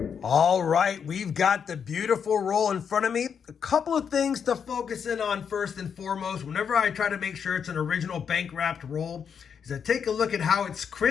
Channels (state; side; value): quieter; right; 7.1 dB